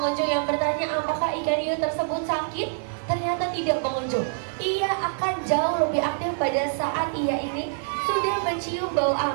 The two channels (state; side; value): silent; left; digital silence